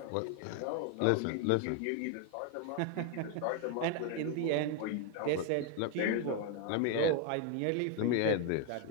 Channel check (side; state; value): both; different; correlation 0.01